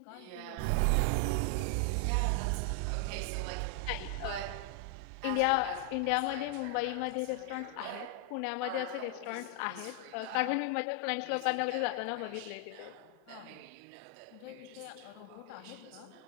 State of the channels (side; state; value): both; different; correlation 0.00